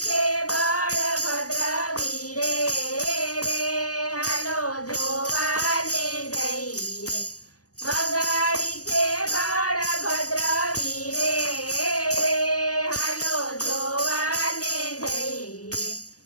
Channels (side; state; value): right; late; 0.67 ms